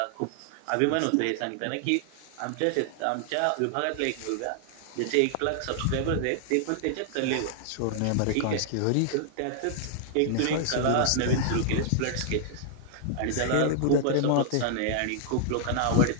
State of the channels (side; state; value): both; different; correlation 0.00